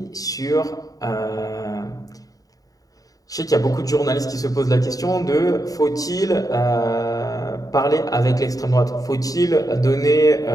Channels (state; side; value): late; right; 0.18 ms